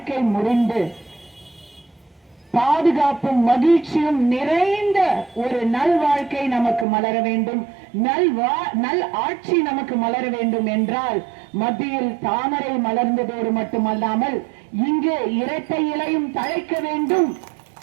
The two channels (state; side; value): drops out; left; at 6.9 s